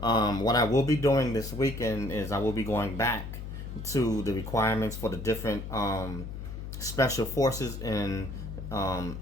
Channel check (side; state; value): left; noise; hum, 8 dB below the sound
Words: I will be doing this weekend is I will be going back to the requirements for the different special forces in